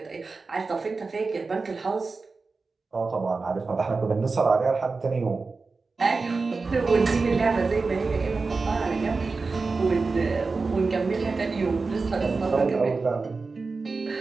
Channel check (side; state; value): left; quieter; 4.1 dB